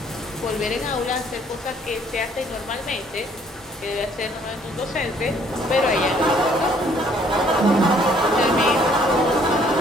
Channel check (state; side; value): normal; both; correlation 0.62